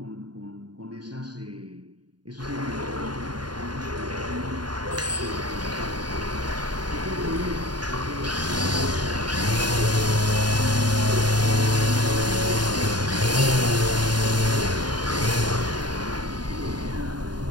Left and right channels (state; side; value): late; left; 0.70 ms